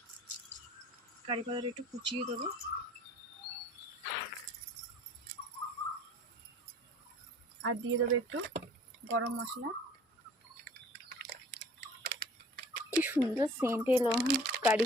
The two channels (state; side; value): normal; both; correlation 0.49